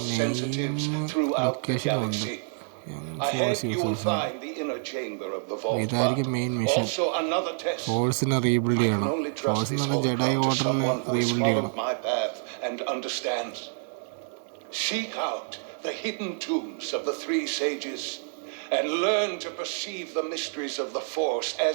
sensitives throughout the galaxy. Ahead you will find the inner chamber of the vault. ഇതായിരിക്കും main mission. ഫോഴ്സിനെ rebuild ചെയ്യണം. ഫോഴ്സിനെ ജെഡൈ ഓർഡറിനെ rebuild ചെയ്യണം. Seek out the hidden tombs of the three sages and learn to perceive the mysteries of the Force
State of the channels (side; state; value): left; silent; 58 dB below the other